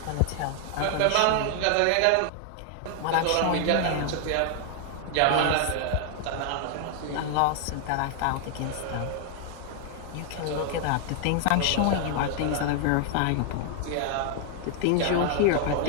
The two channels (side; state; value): both; different; correlation 0.00